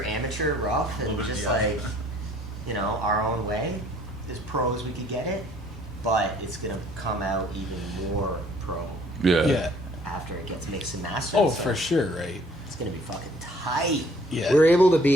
amateur, rough, and Little bit, just yeah. like, you know, our own way, as pro as we could get it. But it's gonna come out even more pro Yeah. Yeah. after it gets mixed and mastered. Oh, so for sure, right? It's gonna be fucking tight. Yeah. We're able to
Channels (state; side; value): normal; both; correlation 0.58